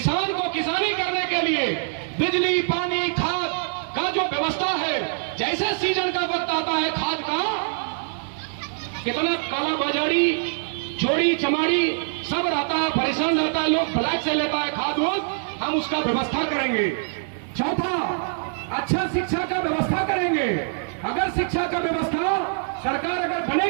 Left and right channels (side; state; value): left; silent; 63 dB below the other